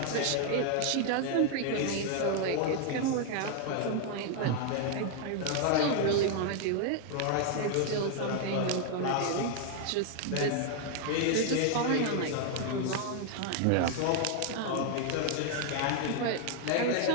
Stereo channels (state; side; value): different; both; correlation 0.00